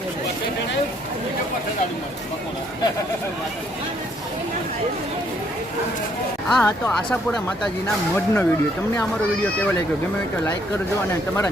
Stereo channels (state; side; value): normal; both; correlation 0.68